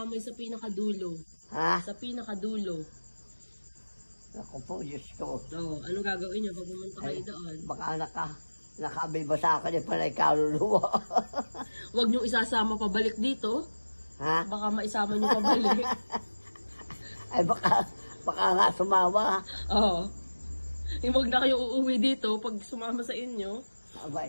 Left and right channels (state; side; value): inverted; both; correlation -1.00